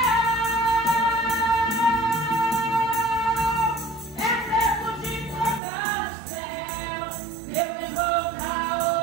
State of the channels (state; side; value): drops out; left; at 5.6 s